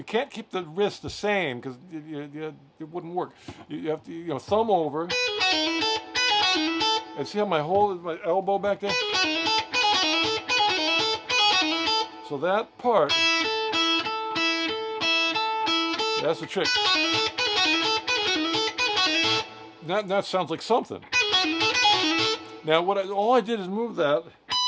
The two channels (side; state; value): both; identical; correlation 1.00